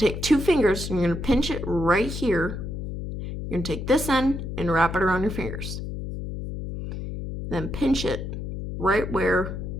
take two fingers and you're going to pinch it right here. You're going to take this end and wrap it around your fingers. Then pinch it right where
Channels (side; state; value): left; noise; hum, 6 dB below the sound